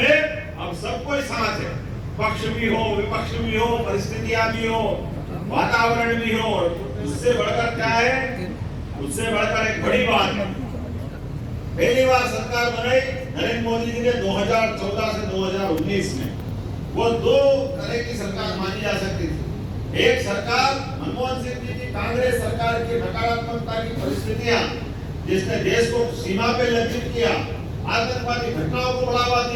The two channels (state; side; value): identical; both; correlation 1.00